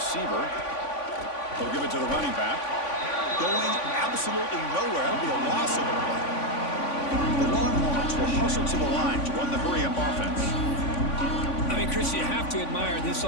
They'll give it to the running back. Going absolutely nowhere. That'll be a loss of the play. The Longhorns will hustle to the line to run the hurry-up offense. I mean, Chris, you have to admire this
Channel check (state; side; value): late; right; 3.5 ms